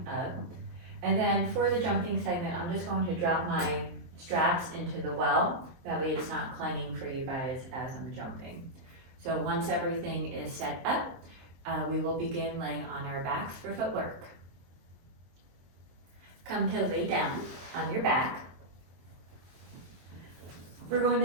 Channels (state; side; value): late; left; 23 ms